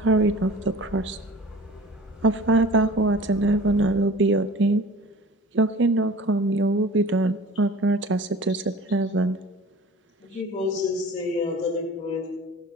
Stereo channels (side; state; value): both; normal; correlation 0.42